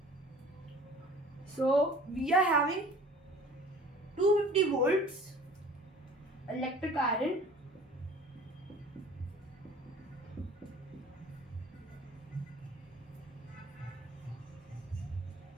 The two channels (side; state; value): both; normal; correlation 0.47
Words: So we are having 250 volts electric iron